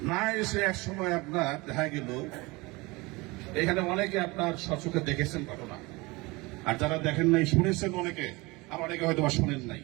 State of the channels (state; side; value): quieter; left; 23.9 dB